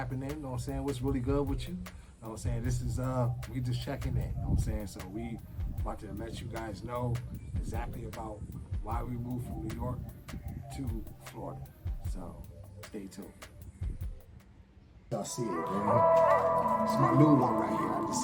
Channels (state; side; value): identical; both; correlation 1.00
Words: in. You know what I'm saying? What's really good with you? You know what I'm saying? This is we just checking in. You know what I'm saying? So we about to let you guys know exactly about why we moved from New York to Florida. So stay tuned. Y'all see it, man. It's my new one right here. I